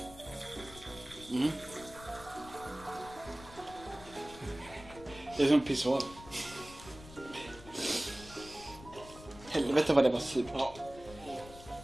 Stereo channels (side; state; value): left; noise; rumble, 17 dB below the sound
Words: Det är som pissoar. Helvete vad det var surt. Ja.